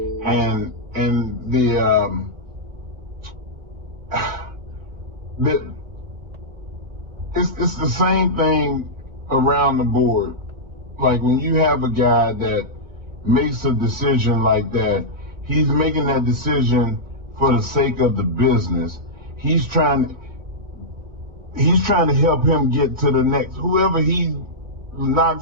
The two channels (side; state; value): left; late; 2.0 ms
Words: And it's the same thing around the board. Like when you have a guy that makes a decision like that, he's making that decision for the sake of the business. He's trying to help him get to the next. Whoever he